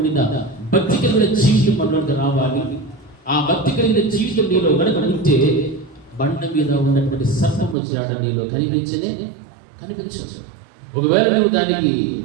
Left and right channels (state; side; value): drops out; left; at 7.8 s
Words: భక్తి కలిగిన జీవితం మనలోకి రావాలి. ఆ భక్తి కలిగిన జీవితం నీలో కనుక ఉంటే బండ మీద ఉన్నటువంటి సర్పము జాడ నీలో కనిపించదు. ఒకవేళ నువ్వు దానికి